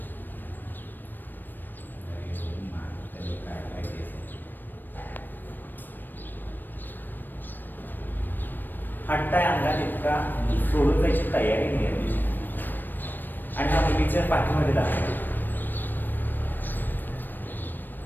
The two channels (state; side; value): late; right; 0.092 ms